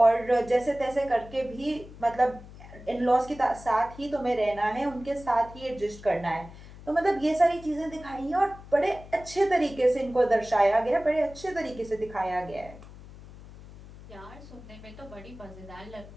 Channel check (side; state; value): left; noise; hum, 17 dB below the sound